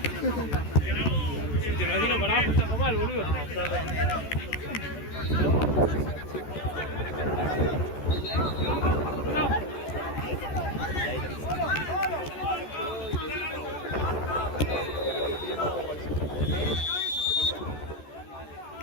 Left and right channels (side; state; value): right; late; 14 ms